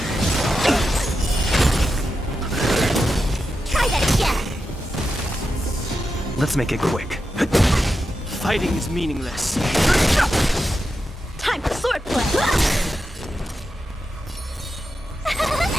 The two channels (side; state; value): both; normal; correlation 0.89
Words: Try that again! Let's make it quick. Fighting is meaningless. Time for swordplay!